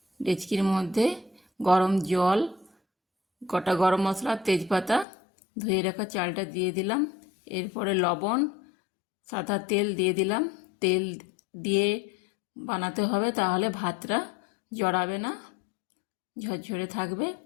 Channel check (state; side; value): drops out; right; at 5.1 s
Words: ডেচকির মধ্যে গরম জল, গোটা গরম মশলা, তেজপাতা, ধুয়ে রাখা চালটা দিয়ে দিলাম। এরপরে লবণ, সাদা তেল দিয়ে দিলাম। তেল দিয়ে বানাতে হবে, তাহলে ভাতটা জড়াবে না, ঝরঝরে থাকবে।